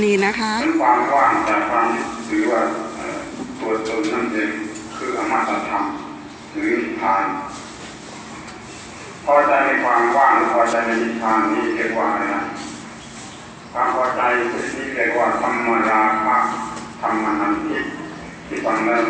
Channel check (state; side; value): identical; both; correlation 1.00